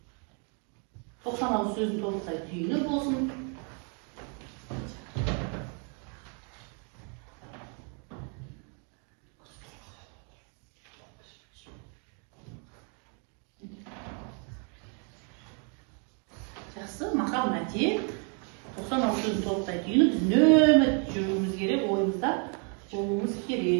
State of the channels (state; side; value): quieter; left; 39.3 dB